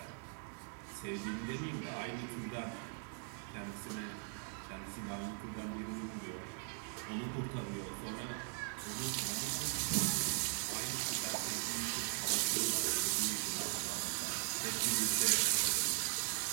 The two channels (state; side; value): silent; left; 51 dB below the other